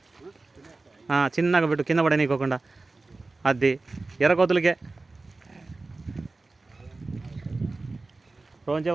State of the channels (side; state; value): left; quieter; 3.4 dB